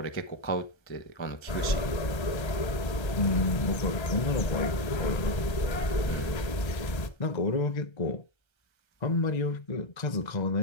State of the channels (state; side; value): late; right; 1.3 ms